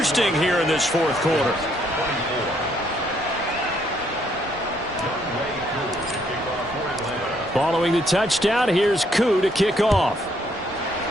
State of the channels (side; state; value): both; normal; correlation 0.70